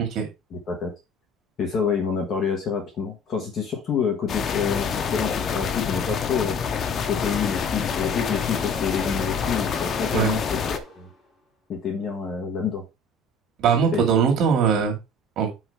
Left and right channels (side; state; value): both; normal; correlation 0.45